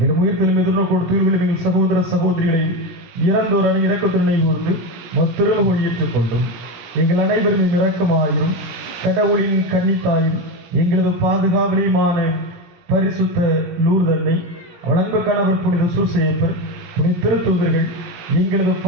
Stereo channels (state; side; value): late; left; 17 ms